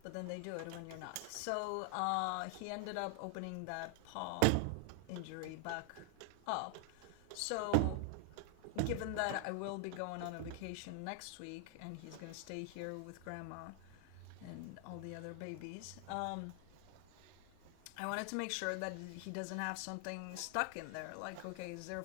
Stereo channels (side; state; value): both; different; correlation 0.00